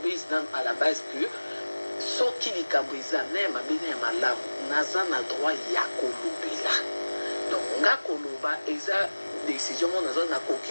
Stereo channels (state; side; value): inverted; both; correlation -1.00